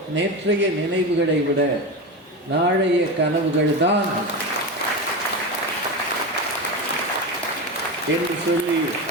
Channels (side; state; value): both; normal; correlation 0.20